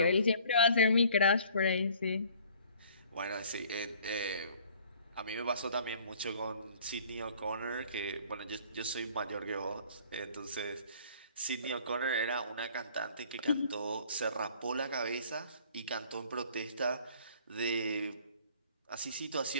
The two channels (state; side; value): inverted; both; correlation -0.54